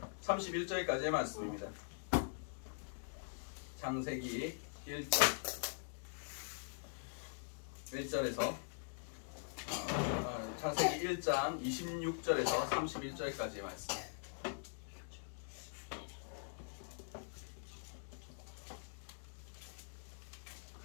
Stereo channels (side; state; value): right; silent; digital silence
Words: 31절까지의 말씀입니다. 창세기 1절에서 창세기 1장 26절에서 31절까지의 말씀.